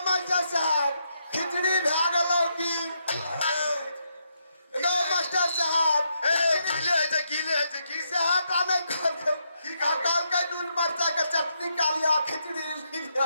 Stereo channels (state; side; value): inverted; both; correlation -0.79